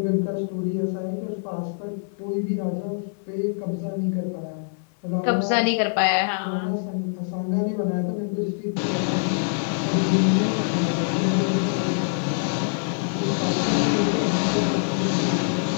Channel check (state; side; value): silent; right; 55 dB below the other